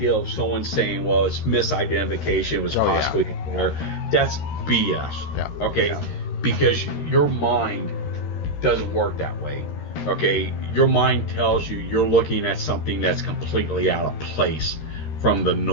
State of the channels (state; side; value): late; right; 13 ms